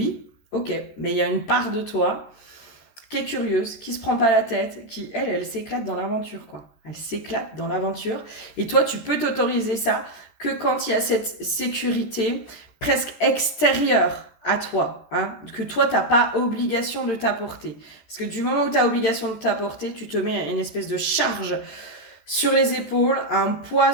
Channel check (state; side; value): late; right; 14 ms